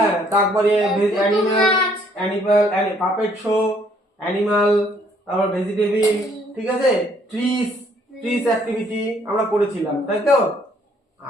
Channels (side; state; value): both; normal; correlation 0.64